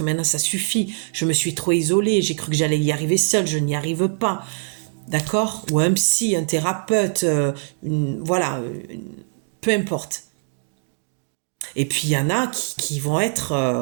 maintenant ça suffit. Je me suis trop isolée, j'ai cru que j'allais y arriver seule, je n'y arrive pas. D'accord? Ou un psy, un thérapeute, voilà, peu importe. Et puis il y en a qui vont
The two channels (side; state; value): left; silent; digital silence